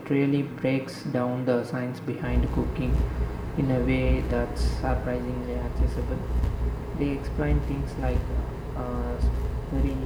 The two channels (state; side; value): identical; both; correlation 1.00